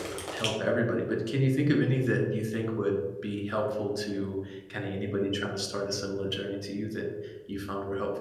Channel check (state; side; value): identical; both; correlation 1.00